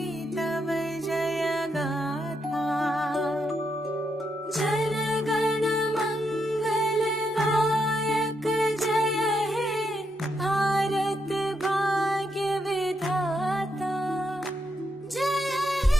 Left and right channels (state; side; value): normal; both; correlation 0.80